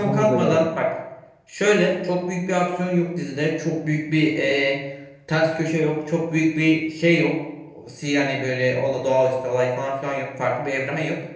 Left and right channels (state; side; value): identical; both; correlation 1.00